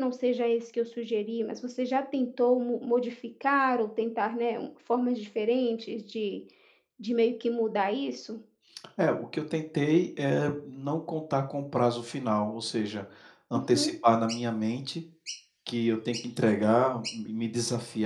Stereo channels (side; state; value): both; identical; correlation 1.00